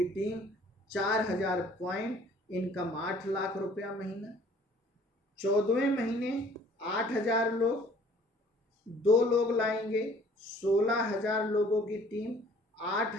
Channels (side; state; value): both; normal; correlation 0.55